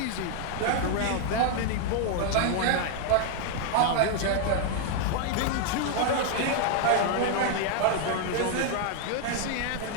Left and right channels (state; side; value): different; both; correlation 0.00